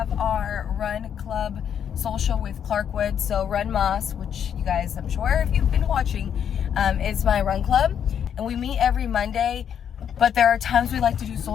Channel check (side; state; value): right; quieter; 8.6 dB